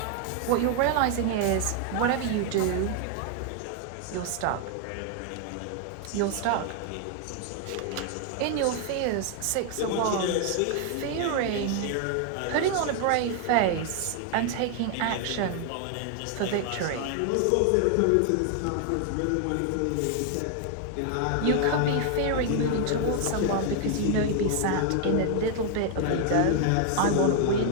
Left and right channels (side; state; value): both; different; correlation 0.00